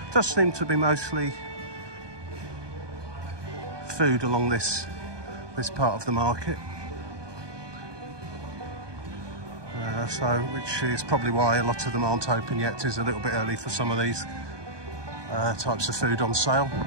does seem to be mostly food along this part of the market. Which is probably why a lot of them aren't open yet. It is a little bit early for some of these types of food on sale.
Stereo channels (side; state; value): left; late; 1.2 ms